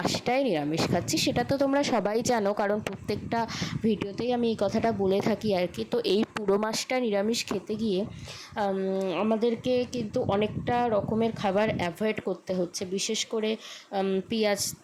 নিরামিষ খাচ্ছি, সেটা তো তোমরা সবাই জানো, কারণ প্রত্যেকটা ভিডিওতেই আমি এই কথাটা বলে থাকি আর কি। তো এই পুরো মাসটা নিরামিষ খেতে গিয়ে আমাদেরকে কিন্তু অনেকটা রকমের খাবার অ্যাভয়েড করতে হচ্ছে, বিশেষ করে পেঁয়াজ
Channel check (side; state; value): both; identical; correlation 1.00